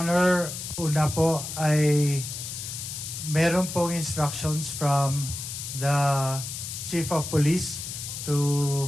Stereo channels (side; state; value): left; noise; hiss, 7 dB below the sound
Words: una po ay meron pong instructions from the Chief of Police to